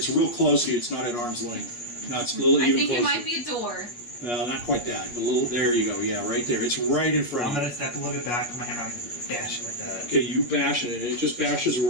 real close to you. It's not at arm's length. No, it's a little I even think closer. it might be a door. No, not quite that. A little. There you go. Yeah, right there. It's right in front I'm of you. gonna step a little bit back. I'm gonna have to bash it like that. Okay, you bash it, and it just bashes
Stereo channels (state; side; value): late; right; 8.4 ms